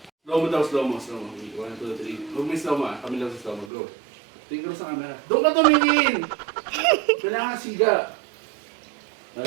Slow mo daw, slow mo. 1, 2, 3. Huwag may slow mo ah. Kami lang sa slow mo. Go. Tingin sa camera. Doon ka tumingin! Kailangan siga.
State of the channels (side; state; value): left; drops out; at 3.7 s